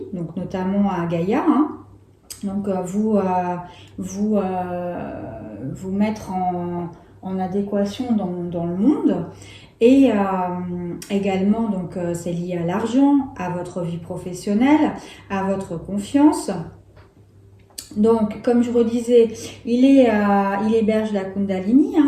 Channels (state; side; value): identical; both; correlation 1.00